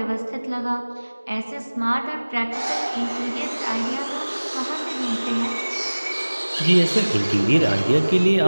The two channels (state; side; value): inverted; both; correlation -1.00